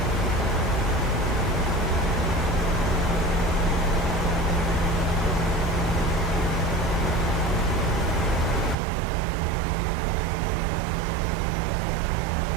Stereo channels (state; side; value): drops out; left; at 8.8 s